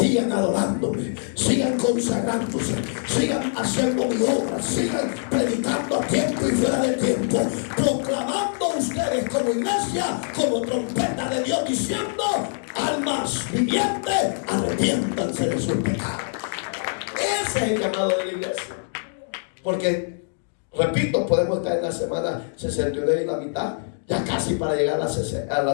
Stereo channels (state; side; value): silent; right; digital silence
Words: adorándome, sigan consagrándose, sigan haciendo mi obra, sigan predicando a tiempo y fuera de tiempo, proclamando ustedes como iglesia, como trompeta de Dios, diciendo: almas vivientes, arrepiéntanse de sus pecados. Ese es el llamado de la iglesia. Porque, repito, podemos estar en la semana 69 y la mitad, ya casi para llegar a